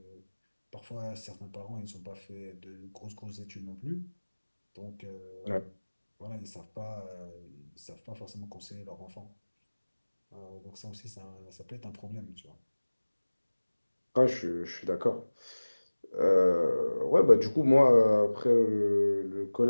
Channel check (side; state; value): both; inverted; correlation -1.00